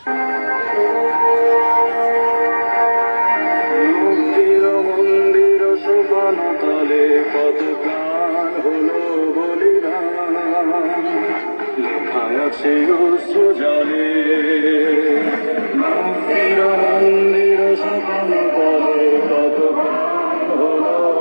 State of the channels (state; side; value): inverted; both; correlation -1.00